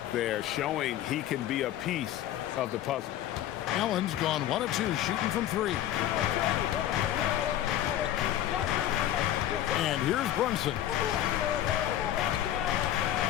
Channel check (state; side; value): quieter; right; 12.2 dB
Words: there, showing he can be a piece of the puzzle. Allen's gone 1 of 2, shooting from 3. And here's Brunson.